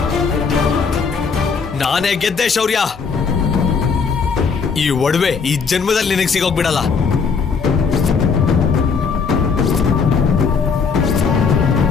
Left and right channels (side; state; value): right; quieter; 5.5 dB